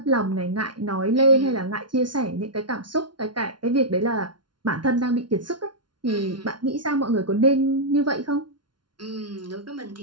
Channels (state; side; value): late; left; 0.71 ms